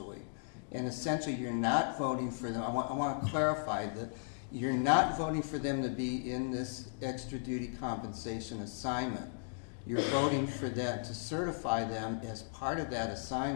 And essentially, you're not voting for them. I want to clarify that you're not voting for them to be in this extra duty compensation assignment. You're voting for them to certify them as part of that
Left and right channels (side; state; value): right; silent; digital silence